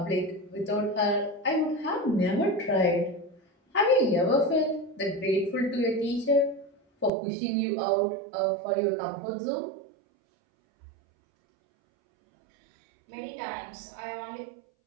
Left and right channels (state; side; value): drops out; left; at 7.1 s